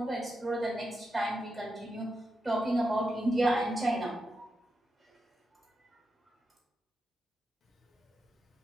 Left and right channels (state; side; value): normal; both; correlation 0.87